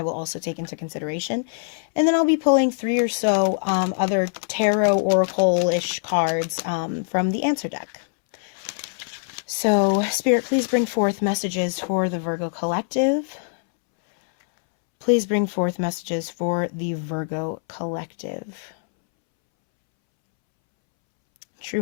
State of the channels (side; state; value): right; silent; 63 dB below the other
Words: will also take into consideration. And then I'll be pulling 3 or so other tarot oracle-ish cards from the answer deck. So, Spirit, please bring forth messages for the Virgo Collective. Please bring forth messages for the Virgo Collective.